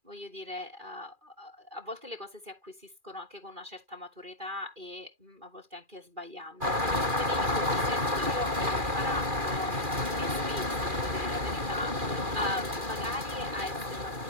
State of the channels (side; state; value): left; late; 2.4 ms